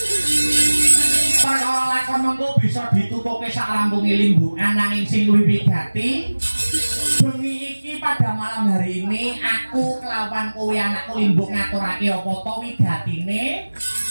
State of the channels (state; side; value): inverted; both; correlation -1.00